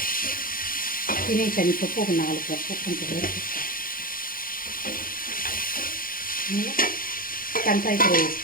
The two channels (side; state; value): right; late; 0.41 ms